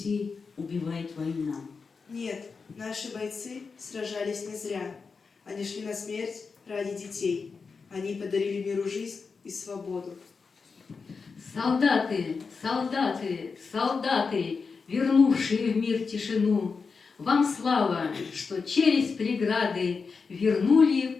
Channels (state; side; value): quieter; right; 4.9 dB